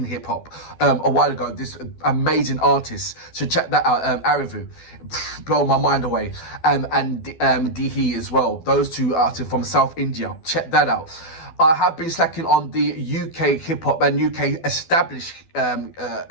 hip hop a while ago. This amazing artist, so check that out. ArrDee, blow my mind away. And Dihi as well. Those 2 artists from South India. Check that out. I have been slacking on the UK hip hop and UK established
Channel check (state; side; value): late; right; 12 ms